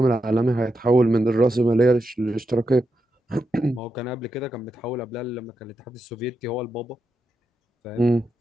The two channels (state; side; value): normal; both; correlation 0.86